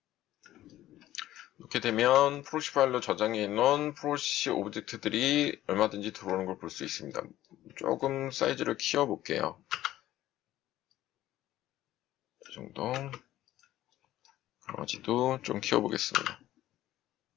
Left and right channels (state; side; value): quieter; right; 14.2 dB